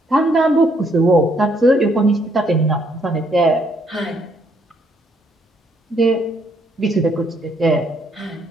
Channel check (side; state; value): both; normal; correlation 0.70